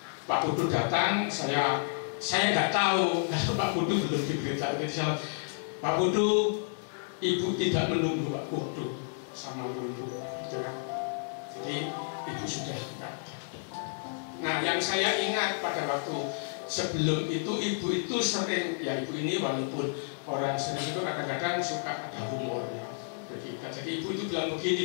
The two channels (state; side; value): silent; right; digital silence